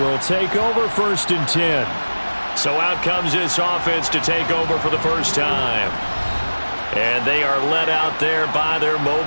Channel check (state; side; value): inverted; both; correlation -1.00